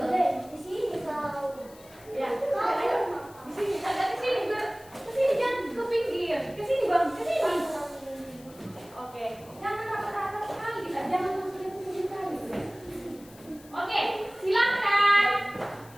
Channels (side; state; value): left; noise; hiss, 23 dB below the sound